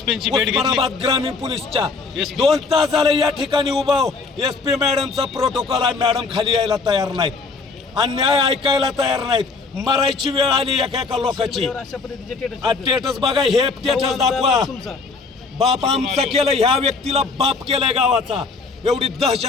ग्रामीण पोलीसच्या 2 तास झाले या ठिकाणी उभा. SP मॅडमचा प्रोटोकॉल आहे, मॅडम खाली यायला तयार नाहीत, अन्याय ऐकायला तयार नाहीत. मरायची वेळ आली एका लोकांची. स्टेटस बघा, हे स्टेटस दाखवा. बाप आमचा केलं, ह्या व्यक्तीला बाप केलाय गावाचा. एवढी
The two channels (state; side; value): quieter; right; 4.3 dB